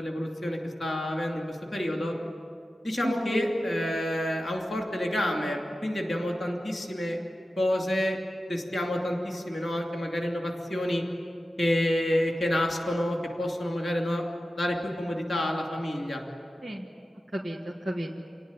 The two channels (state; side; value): normal; both; correlation 0.94